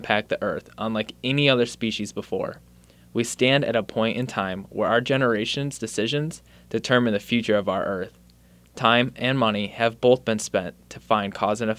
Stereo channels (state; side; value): identical; both; correlation 1.00